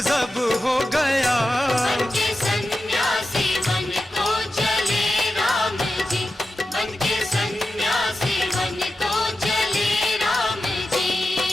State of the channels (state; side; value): normal; both; correlation 0.92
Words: हो गया, बन के सन्यासी बन को चले राम जी, बन के सन्यासी बन को चले राम जी।